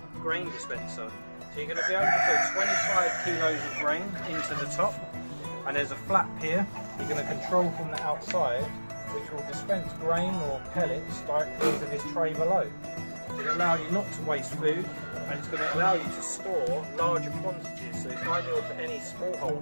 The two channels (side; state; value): both; inverted; correlation -1.00